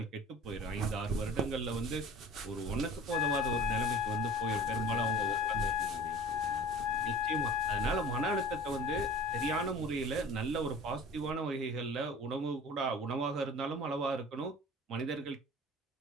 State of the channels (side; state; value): both; normal; correlation 0.41